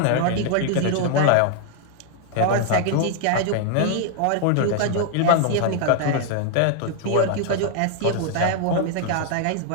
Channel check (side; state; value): both; different; correlation 0.00